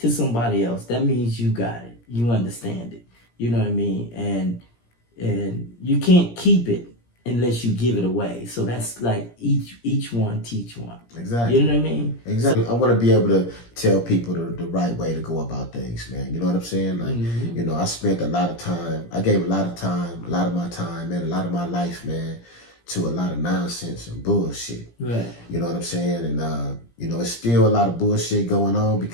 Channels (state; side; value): late; right; 17 ms